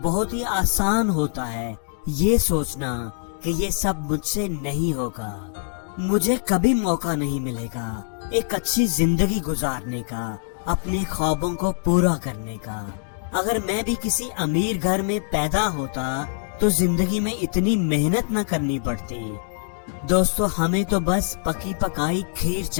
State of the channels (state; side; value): silent; right; 63 dB below the other